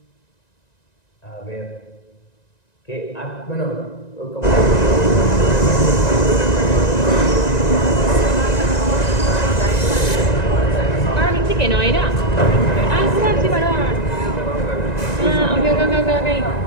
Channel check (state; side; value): late; right; 1.9 ms